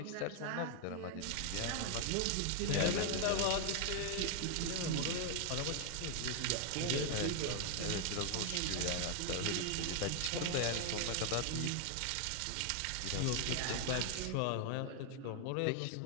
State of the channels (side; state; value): both; different; correlation 0.00